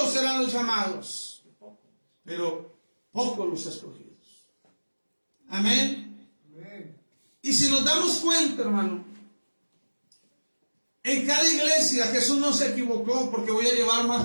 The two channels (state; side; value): inverted; both; correlation -1.00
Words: serán los llamados, pero pocos los escogidos. Amén. Y si nos damos cuenta, hermano, en cada iglesia Jesús no se equivocó, porque voy a llevar